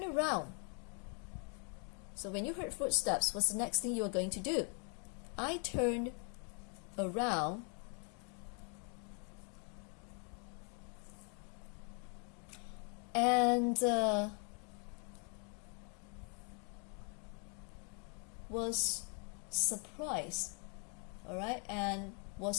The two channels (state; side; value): quieter; right; 38.9 dB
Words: around. So when you heard footsteps, what's the next thing you are going to do? I turned around and was surprised, all right, and